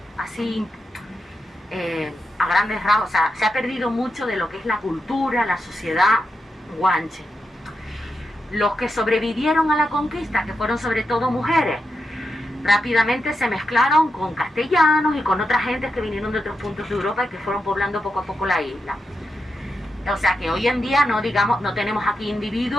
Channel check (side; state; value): both; normal; correlation 0.87